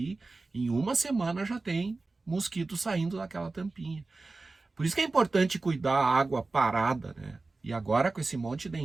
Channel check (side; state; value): left; quieter; 3.5 dB